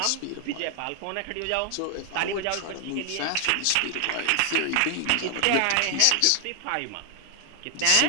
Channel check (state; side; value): different; both; correlation 0.00